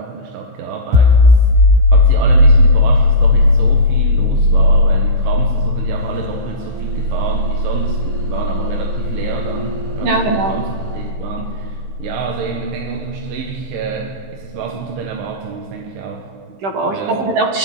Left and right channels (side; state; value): left; late; 15 ms